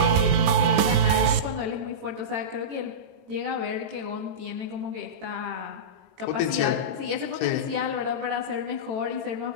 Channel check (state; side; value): late; left; 18 ms